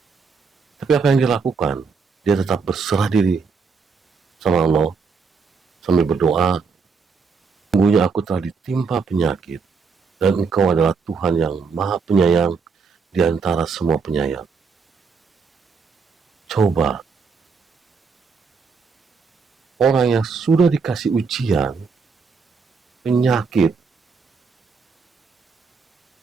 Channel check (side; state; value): left; quieter; 5.1 dB